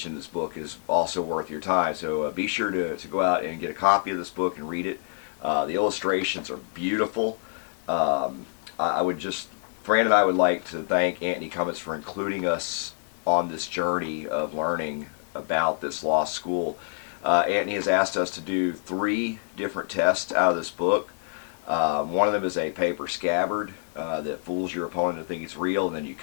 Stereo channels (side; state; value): right; silent; digital silence